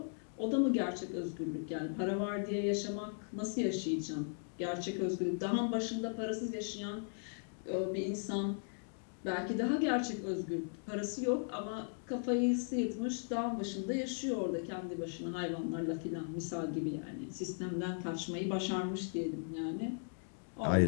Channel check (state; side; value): silent; right; digital silence